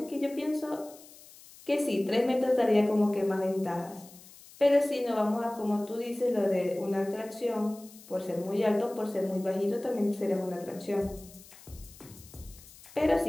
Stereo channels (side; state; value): left; noise; hiss, 21 dB below the sound